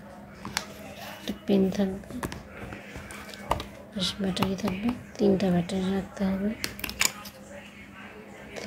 পেন থাকবে, ব্যাটারি থাকবে, 3টা ব্যাটারি রাখতে হবে,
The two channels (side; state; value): both; identical; correlation 1.00